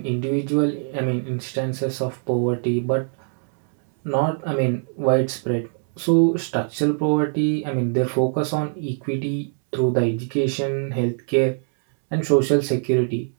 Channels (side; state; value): left; silent; 64 dB below the other